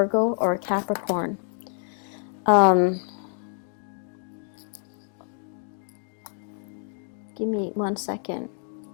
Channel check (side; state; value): right; silent; 60 dB below the other